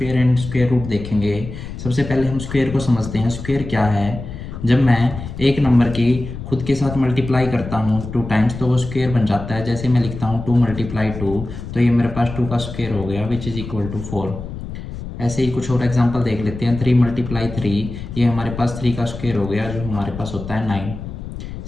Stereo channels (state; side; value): noise; left; rumble, 9 dB below the sound